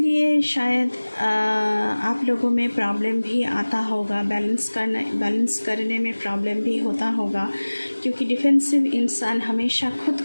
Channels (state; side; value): inverted; both; correlation -1.00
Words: शायद आप लोगों में प्रॉब्लम भी आता होगा, बैलेंस करने में प्रॉब्लम भी होता होगा, क्योंकि डिफेंसिव इंसान हमेशा खुद